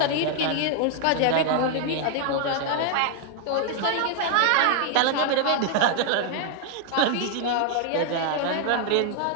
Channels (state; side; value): different; both; correlation 0.00